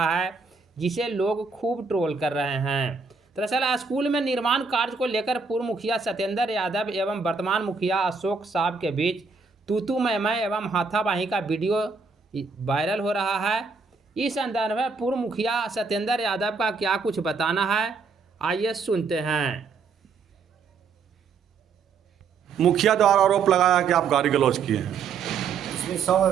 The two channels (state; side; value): quieter; left; 4.9 dB